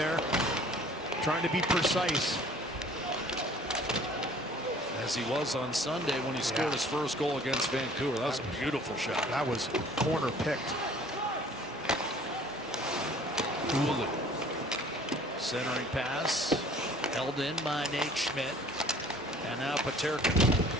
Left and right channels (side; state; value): both; normal; correlation 0.52